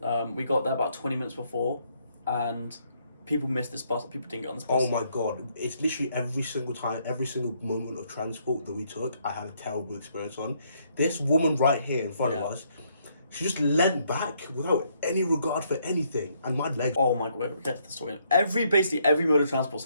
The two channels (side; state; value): both; inverted; correlation -0.71